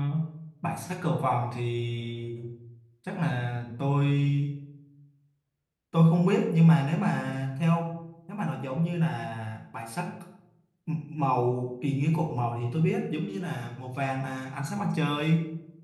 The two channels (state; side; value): identical; both; correlation 1.00